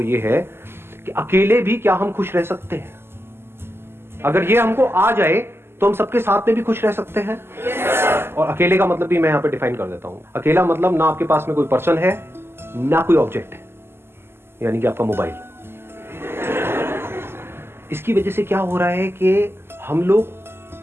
ये है कि अकेले भी क्या हम खुश रह सकते हैं? अगर ये हमको आ जाए तो हम सबके साथ में भी खुश रह सकते हैं। और अकेले का मतलब भी मैं यहां पे डिफाइन कर देता हूं। अकेला मतलब ना आपके पास में कोई पर्सन है ना कोई ऑब्जेक्ट है, यानी कि आपका मोबाइल। इसकी वजह से क्या हो रहा है कि हम लोग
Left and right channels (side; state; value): left; late; 0.12 ms